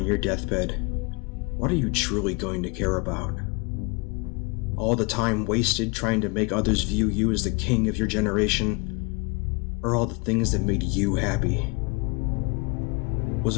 your deathbed, what are you truly going to care about? All the time wasted trying to make others view you as the king of your generation? Or all the things that made you happy? Was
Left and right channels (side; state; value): right; quieter; 30.4 dB